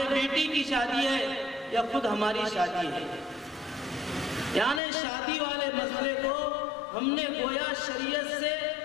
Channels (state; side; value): drops out; right; at 4.8 s